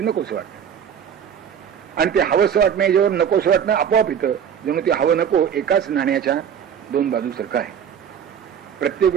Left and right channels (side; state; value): left; quieter; 8.2 dB